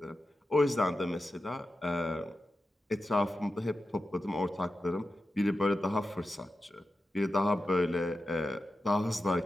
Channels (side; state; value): both; normal; correlation 0.92